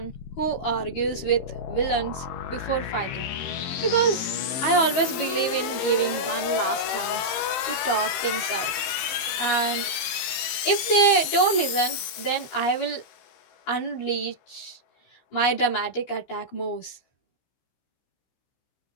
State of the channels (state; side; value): late; right; 15 ms